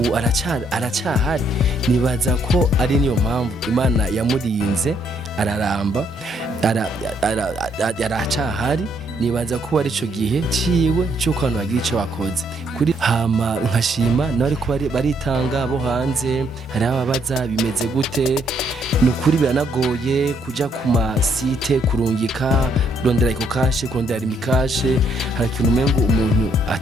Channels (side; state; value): both; normal; correlation 0.71